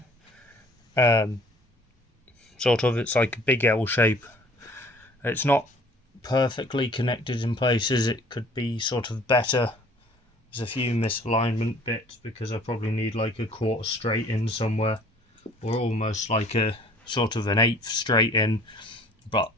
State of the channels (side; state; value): both; normal; correlation 0.53